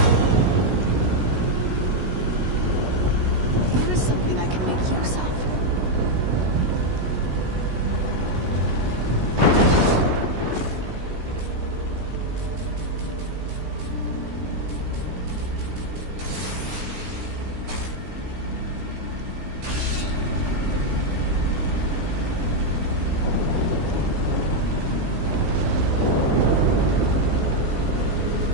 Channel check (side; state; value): left; late; 16 ms